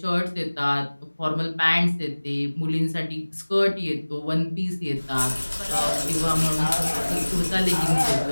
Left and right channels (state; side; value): inverted; both; correlation -1.00